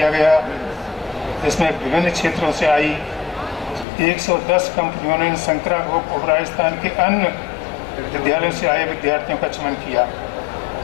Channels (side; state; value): right; drops out; at 3.9 s